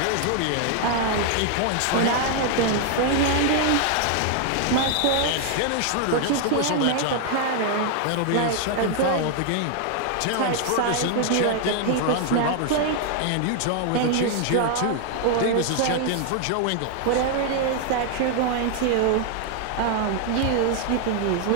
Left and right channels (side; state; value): both; different; correlation 0.00